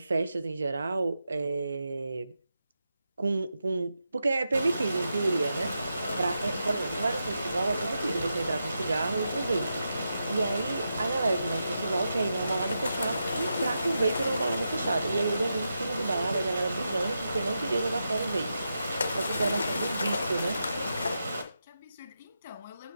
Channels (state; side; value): inverted; both; correlation -0.87